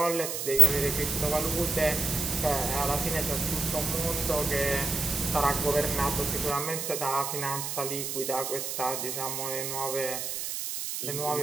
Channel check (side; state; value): right; noise; hiss, 4 dB below the sound